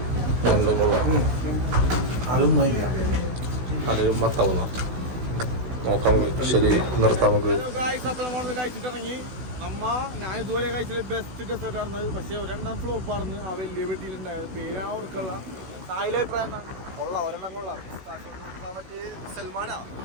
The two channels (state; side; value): late; left; 16 ms